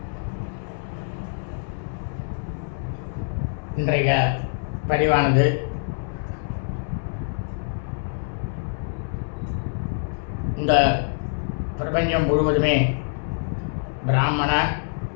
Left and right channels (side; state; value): right; silent; 60 dB below the other